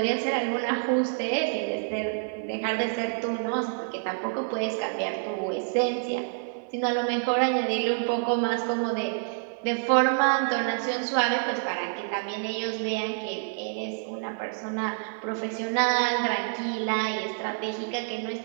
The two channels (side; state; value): left; silent; digital silence